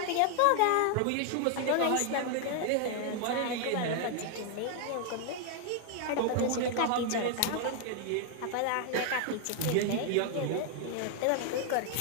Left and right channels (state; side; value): different; both; correlation 0.00